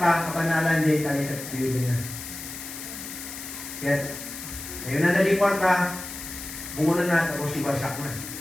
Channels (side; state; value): left; noise; hiss, 10 dB below the sound